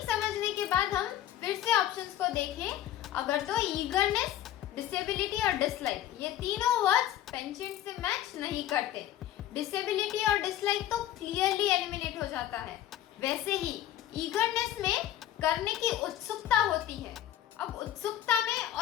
समझने के बाद हम फिर से ऑप्शंस को देखें। अगर तो ईगरनेस, डिसेबिलिटी और डिसलाइक ये तीनों वर्ड्स पेंशन से मैच नहीं करते, डिसेबिलिटी और डिसलाइक तो क्लियरली एलिमिनेट हो जाता है। वैसे ही ईगरनेस में करने की उत्सुकता होती है, अब उत्सुकता में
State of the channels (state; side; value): quieter; right; 12.3 dB